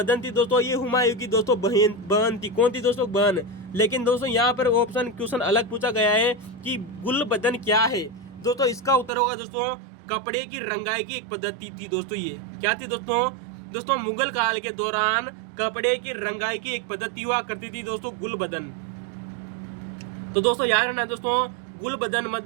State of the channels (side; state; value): left; drops out; at 9.1 s